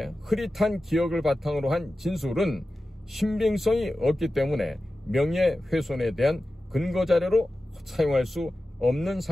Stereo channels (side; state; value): both; normal; correlation 0.94